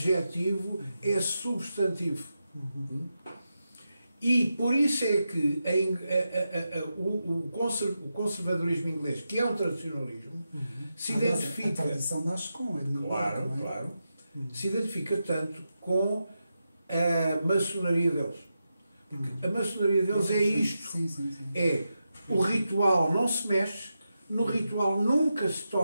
é substantivo. E por isso é que o conservadorismo inglês, que é um tradicionalismo, se identifica... A tradição nasce com ele, não é? Claro, claro. Se identifica tanto com a maçonaria deles. Porque a maçonaria deles é isto. Sim. É o ritual não se mexe, no ritual nunca se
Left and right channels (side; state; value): both; inverted; correlation -0.88